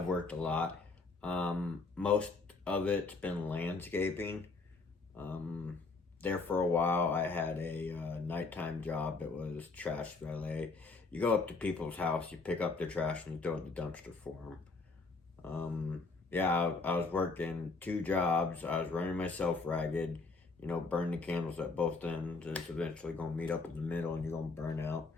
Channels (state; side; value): quieter; right; 3.9 dB